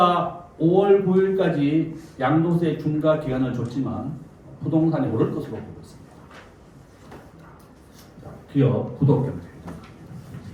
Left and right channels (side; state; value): both; identical; correlation 1.00